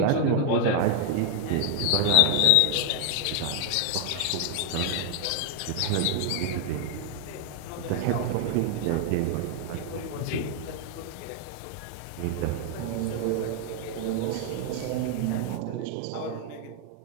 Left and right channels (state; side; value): different; both; correlation 0.00